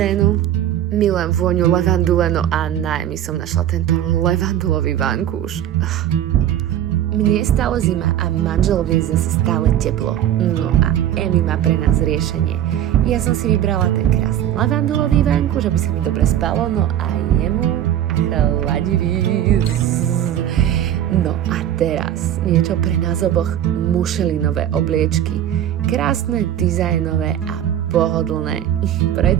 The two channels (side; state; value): left; quieter; 11.2 dB